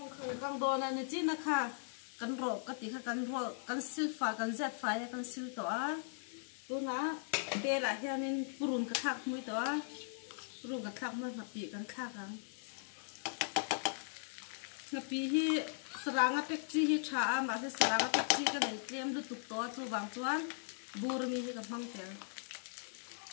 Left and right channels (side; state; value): right; silent; digital silence